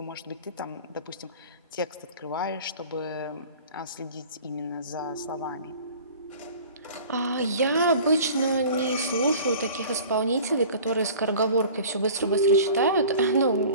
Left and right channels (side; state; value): both; inverted; correlation -0.43